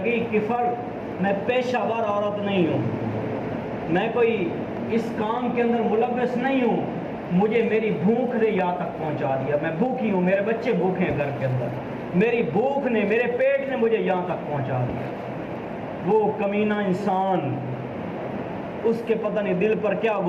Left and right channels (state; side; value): identical; both; correlation 1.00